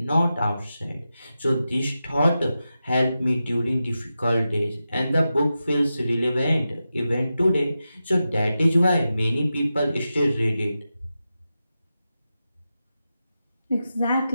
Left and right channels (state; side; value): inverted; both; correlation -0.91